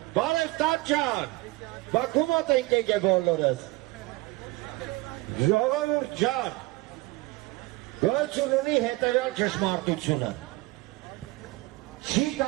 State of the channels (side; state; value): left; quieter; 21.5 dB